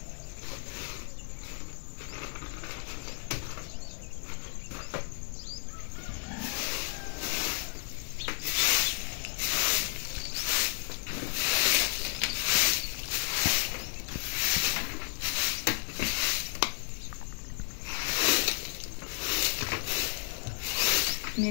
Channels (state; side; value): silent; right; digital silence